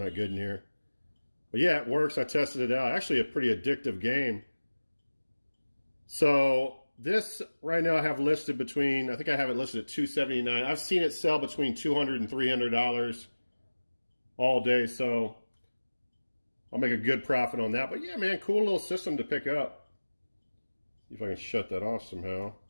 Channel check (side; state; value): both; inverted; correlation -1.00